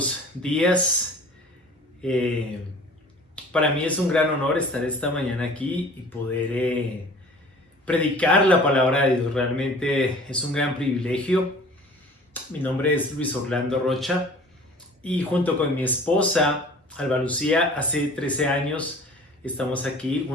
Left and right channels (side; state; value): both; normal; correlation 0.46